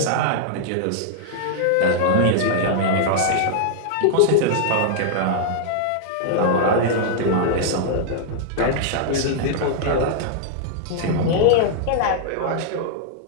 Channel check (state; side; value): different; both; correlation -0.01